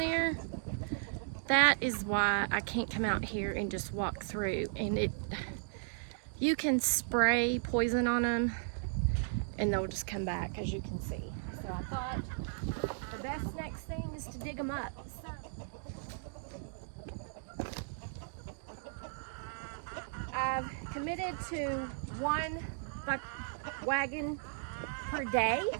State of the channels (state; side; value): silent; left; digital silence